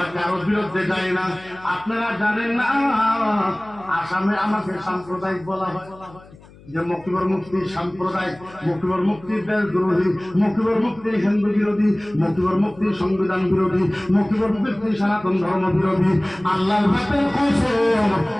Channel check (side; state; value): left; noise; hum, 23 dB below the sound